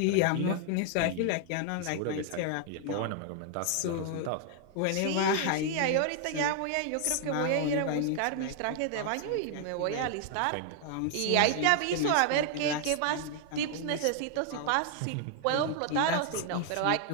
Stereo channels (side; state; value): both; different; correlation 0.00